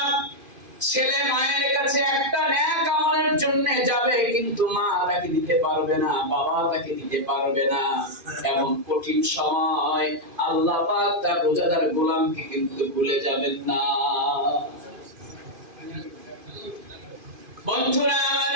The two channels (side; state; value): left; late; 2.5 ms